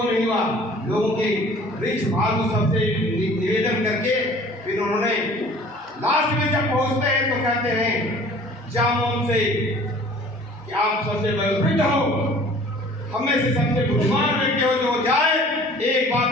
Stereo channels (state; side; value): normal; both; correlation 0.49